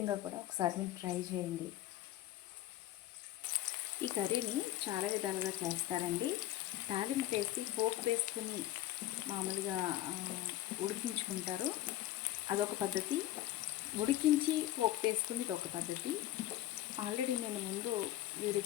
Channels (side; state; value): right; quieter; 14.1 dB